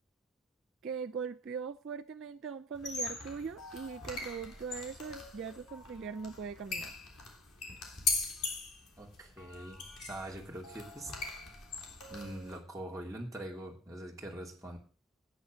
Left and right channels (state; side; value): normal; both; correlation 0.40